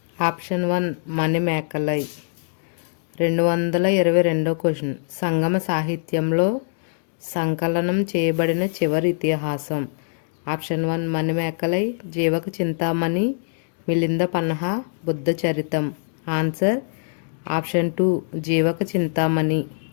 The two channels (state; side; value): silent; right; digital silence